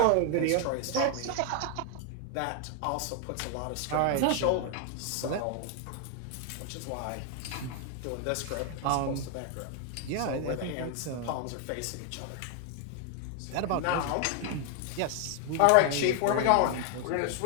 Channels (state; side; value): different; both; correlation 0.00